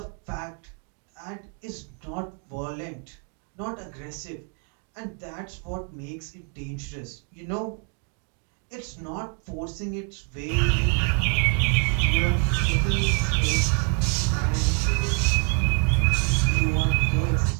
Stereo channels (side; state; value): left; quieter; 35.8 dB